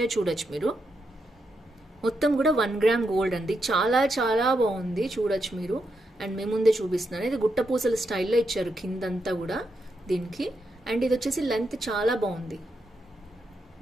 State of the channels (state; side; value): normal; both; correlation 0.83